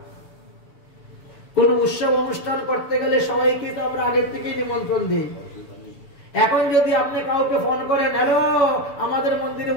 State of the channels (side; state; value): right; late; 7.0 ms